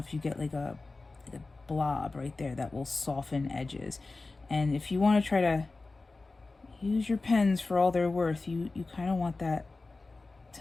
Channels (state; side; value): quieter; right; 3.5 dB